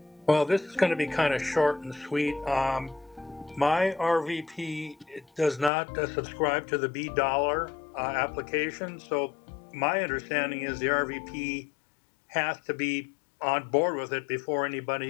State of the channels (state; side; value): drops out; right; at 5.7 s